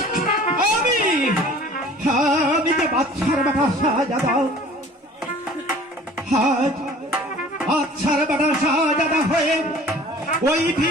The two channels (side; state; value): both; normal; correlation 0.48